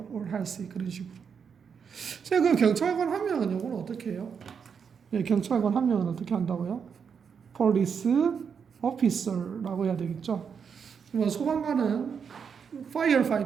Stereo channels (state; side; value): quieter; left; 6.6 dB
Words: all healthy. 그런 식으로. 그 경찰관 한 명은 요거는 어떻게 해요? 예, 경찰관 한 명은 어떻게 한다고요? Police officer라고 해야 되겠죠. 소방관은